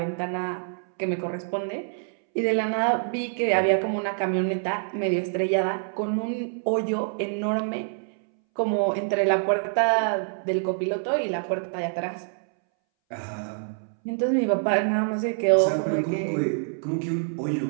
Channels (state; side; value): silent; left; 61 dB below the other